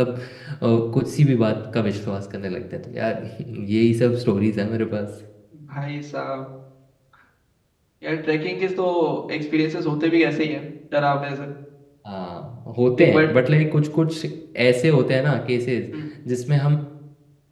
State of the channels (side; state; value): both; identical; correlation 1.00